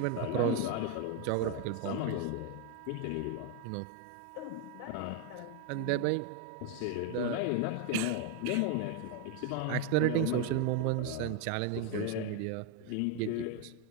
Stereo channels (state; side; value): different; both; correlation 0.01